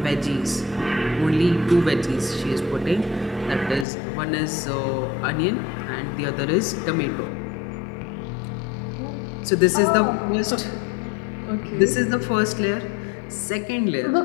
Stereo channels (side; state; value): right; drops out; at 3.9 s